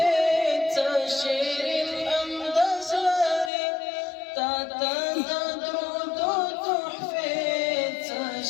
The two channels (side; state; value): right; drops out; at 3.5 s